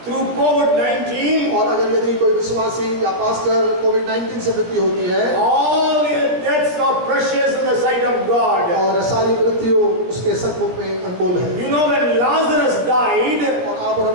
through COVID-19, और अगर यदि कोई विश्वासी या पास्टर कोविड-19 से मृत्यु होती है, all the deaths are precious in the sight of God. और सारी मृत्यु उसके सन्मुख में अनमोल है। You know, when Lazarus died, और आप और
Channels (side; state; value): left; late; 17 ms